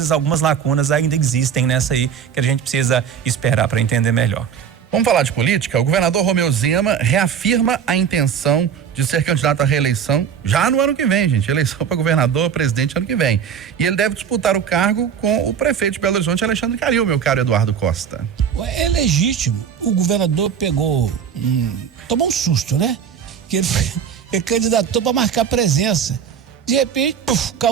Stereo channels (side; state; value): left; quieter; 7.7 dB